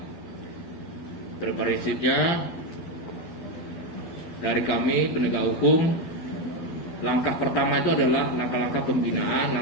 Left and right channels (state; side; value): late; right; 11 ms